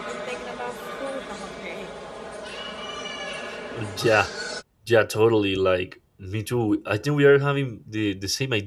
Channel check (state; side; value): identical; both; correlation 1.00